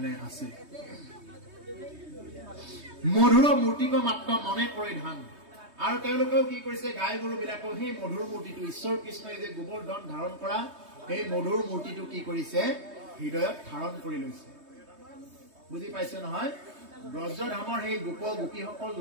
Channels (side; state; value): left; late; 3.2 ms